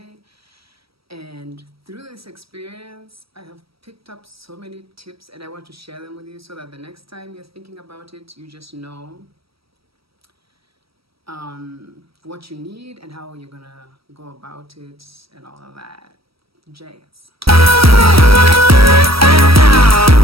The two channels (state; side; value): late; left; 0.76 ms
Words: And through this experience, I have picked up so many tips and I want to share them with you so that the next time you're thinking about it, you just know what you need and how you're gonna go about it and all of that jazz.